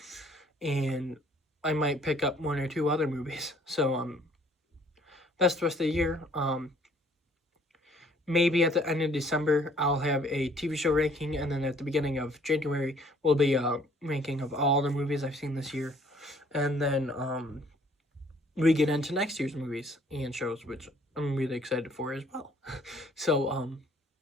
and I might pick up one or two other movies. So that's the rest of the year. Maybe at the end of December I'll have a TV show ranking, and then at the beginning of January will be a ranking of all the movies I've seen this year, and then we get into next year's movies and shows, which I'm really excited for as well. So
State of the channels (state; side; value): normal; both; correlation 0.60